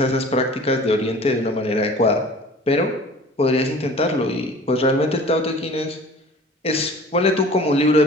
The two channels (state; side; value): normal; both; correlation 0.45